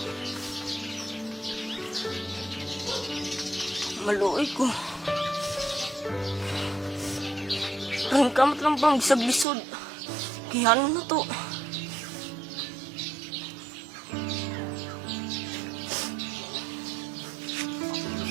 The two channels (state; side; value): drops out; left; at 9.5 s